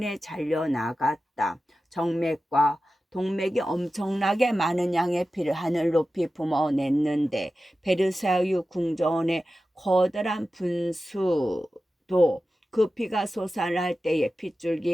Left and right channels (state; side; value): normal; both; correlation 0.94